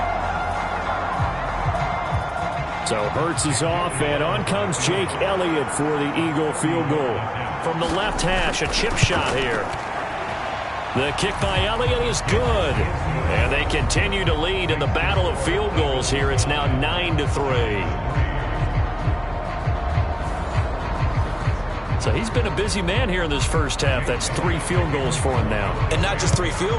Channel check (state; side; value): identical; both; correlation 1.00